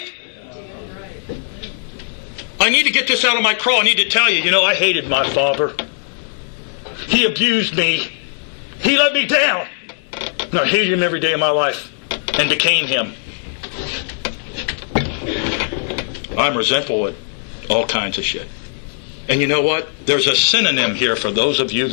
I need to get this out of my craw. I need to tell you, you know, I hated my father. He abused me. He let me down. And I hated him every day of my life and became him. I'm resentful at all kinds of shit. And you know what? There's a synonym here for those of you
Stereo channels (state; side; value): silent; right; digital silence